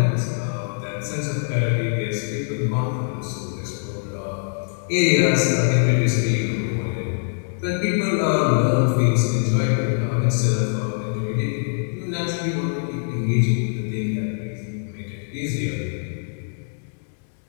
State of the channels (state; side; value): silent; right; 63 dB below the other